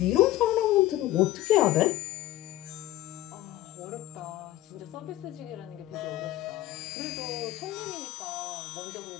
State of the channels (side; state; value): right; quieter; 15.4 dB